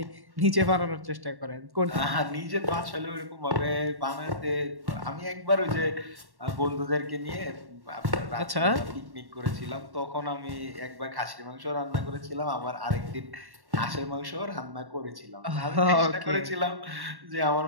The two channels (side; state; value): left; late; 1.1 ms